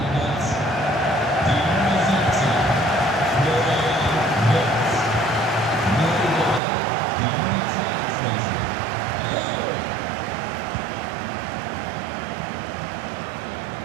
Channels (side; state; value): left; drops out; at 6.6 s